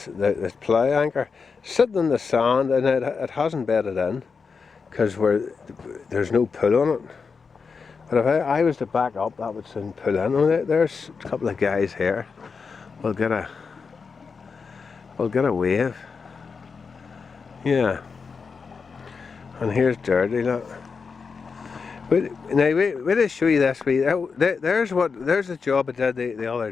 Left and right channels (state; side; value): quieter; right; 5.2 dB